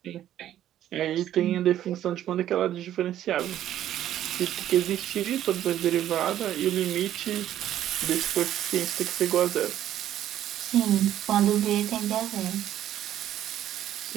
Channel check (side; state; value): left; quieter; 11.9 dB